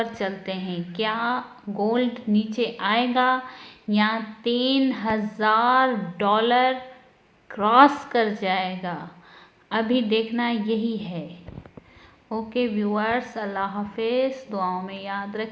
چلتے ہیں، کیا گولڈ نیچے آئے گا یا $3,000 کراس کر جائے گا، ابھی دیکھنا یہی ہے۔ اوکے ویورز، اللہ حافظ، دعاؤں میں یاد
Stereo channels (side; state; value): both; identical; correlation 1.00